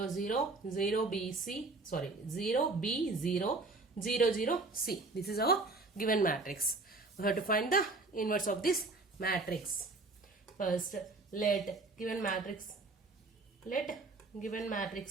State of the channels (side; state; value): left; quieter; 3.5 dB